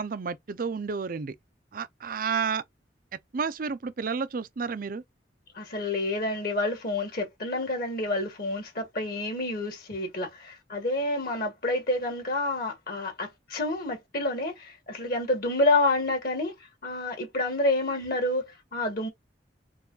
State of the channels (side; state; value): both; normal; correlation -0.11